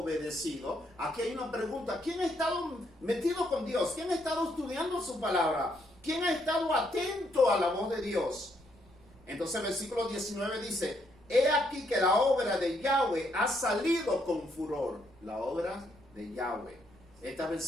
Aquí hay una pregunta. ¿Quién ha estado metido con Dios? ¿Quién ha estado estudiando su palabra? ¿Quién ha estado atento a la voz de Dios? Entonces el versículo 19 dice, he aquí que la obra de Yahweh ha salido con furor. La obra de Yahweh. Esta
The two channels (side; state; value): right; noise; rumble, 27 dB below the sound